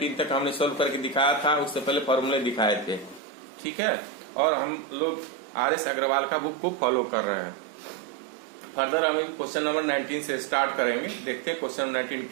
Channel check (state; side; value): drops out; left; at 3.2 s